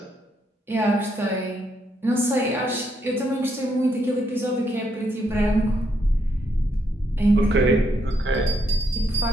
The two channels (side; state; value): both; normal; correlation 0.76